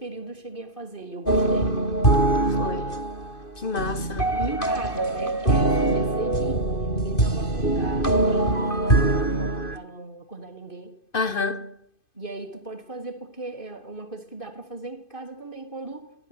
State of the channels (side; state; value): right; late; 2.5 ms